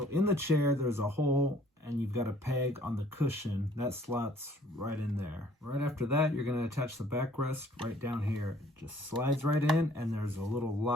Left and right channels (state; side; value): normal; both; correlation 0.58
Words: in the chair, there's a hole, and you've got a peg on the cushion. That slots right in there. Right after that, you're going to attach the backrest right down here. It just slides right in, and there's a little